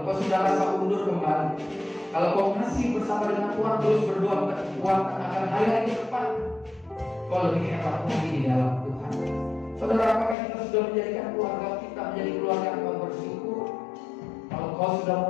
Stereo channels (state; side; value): drops out; right; at 10.4 s